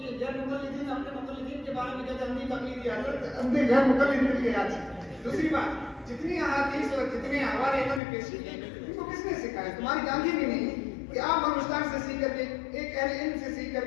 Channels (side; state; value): right; drops out; at 8.0 s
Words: یہ غیر مقلدین اپنے مقلدین کے بارے میں کہتے ہیں اندھی تقلید ہے. حضرت اندھے غیر مقلد مل کے یاد. دوسری بات جتنی احادیث اور جتنے حوالے انہوں نے پیش کیے ان کو کس نے سکھایا؟ تمہاری جانتی بھی نہیں کہ آپ ہندوستان سے سیکھ کر کے ایک اہل علم سے سیکھ کر